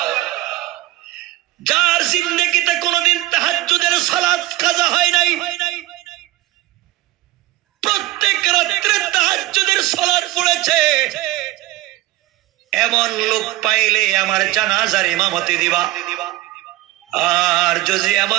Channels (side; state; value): left; quieter; 16.7 dB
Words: যার জিন্দেগিতে কোনদিন তাহাজ্জুদের সালাত কাজা হয় নাই, প্রত্যেক রাত্রে তাহাজ্জুদের সালাত পড়েছে, এমন লোক পাইলে আমার জানাজার ইমামতি দিবা। আর যদি